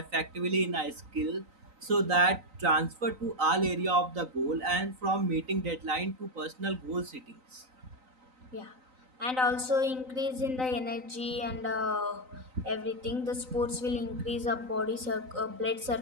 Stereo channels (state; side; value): late; left; 3.9 ms